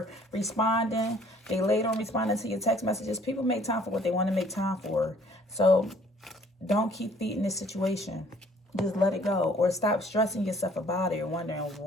responding, they late on responding to your text messages. People make time for what they want to make time for. So don't keep feeding this situation. Just let it go. Or stop stressing yourself about it or wondering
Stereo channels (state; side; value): normal; both; correlation 0.58